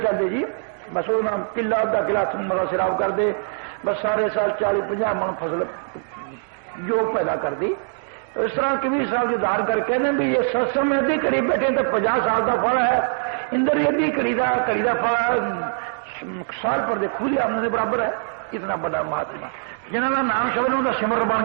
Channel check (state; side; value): silent; left; digital silence